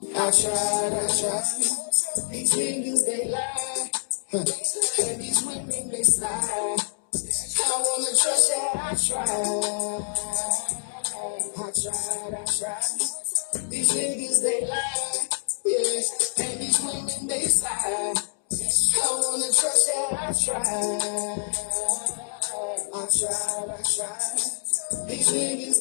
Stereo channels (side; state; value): right; silent; 61 dB below the other